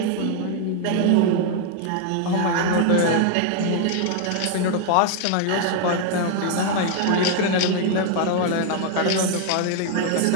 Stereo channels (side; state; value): both; different; correlation 0.00